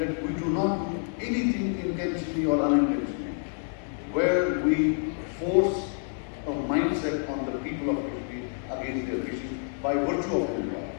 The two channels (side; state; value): right; silent; 59 dB below the other